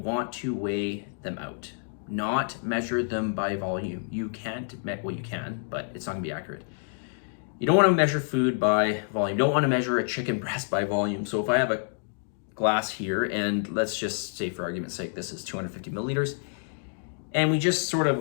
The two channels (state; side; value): silent; right; 59 dB below the other